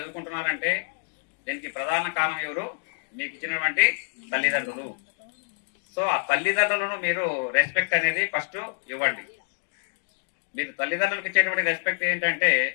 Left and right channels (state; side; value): silent; right; digital silence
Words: దీనికి ప్రధాన కారణం ఎవరు? మీకు ఇచ్చినటువంటి తల్లిదండ్రులు. సో ఆ తల్లిదండ్రులను మీరు రెస్పెక్ట్ అనేది ఫస్ట్ ఇవ్వండి. మీరు తల్లిదండ్రులకు ఇచ్చేటువంటి రెస్పెక్ట్ ఏంటంటే